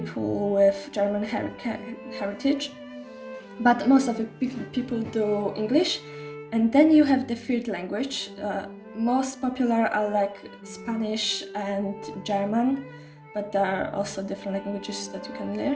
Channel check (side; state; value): both; identical; correlation 1.00